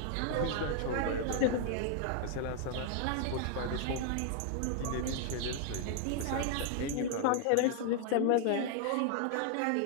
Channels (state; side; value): different; both; correlation 0.00